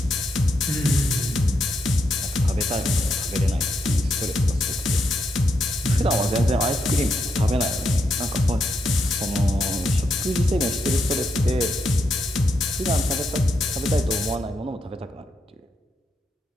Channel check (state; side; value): normal; both; correlation 0.82